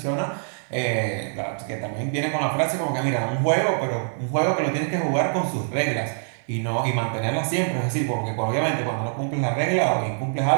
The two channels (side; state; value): left; silent; 62 dB below the other